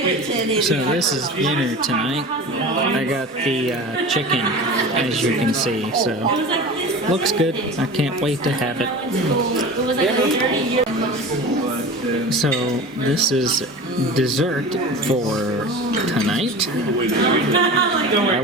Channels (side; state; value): both; normal; correlation 0.34